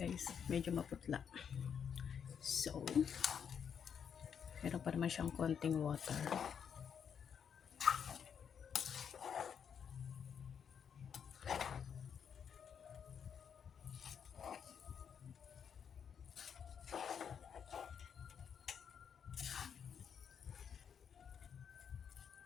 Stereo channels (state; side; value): quieter; right; 7.5 dB